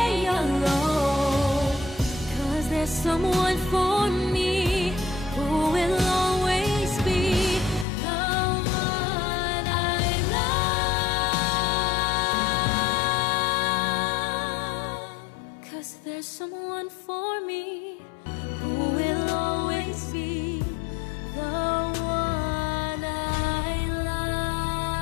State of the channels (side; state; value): right; drops out; at 7.9 s